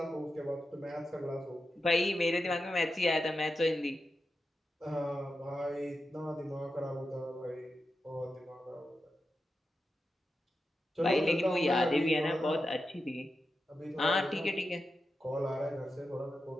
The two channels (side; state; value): both; normal; correlation 0.90